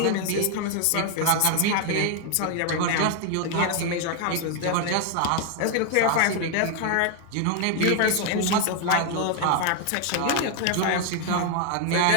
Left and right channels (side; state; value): both; different; correlation 0.01